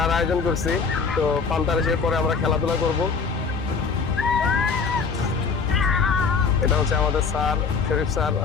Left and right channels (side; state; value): right; quieter; 5.2 dB